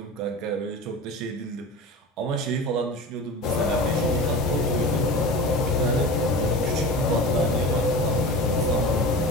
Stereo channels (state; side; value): normal; both; correlation 0.32